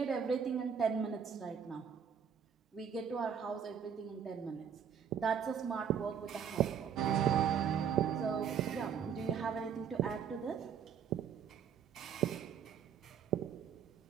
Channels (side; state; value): left; quieter; 7.6 dB